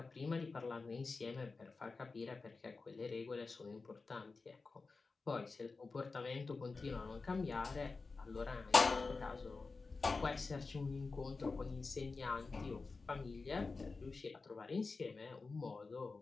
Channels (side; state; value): right; quieter; 4.1 dB